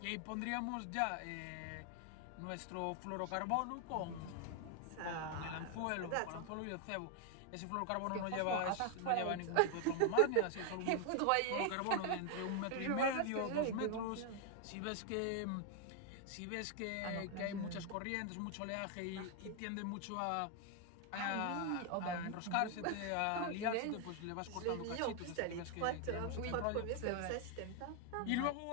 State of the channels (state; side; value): different; both; correlation 0.00